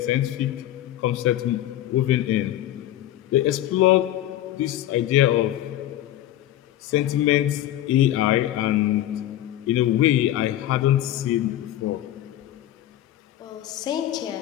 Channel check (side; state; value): right; quieter; 13.4 dB